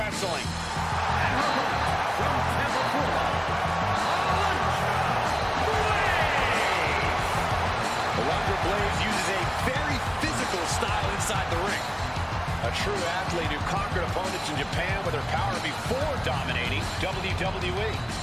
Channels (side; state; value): both; identical; correlation 1.00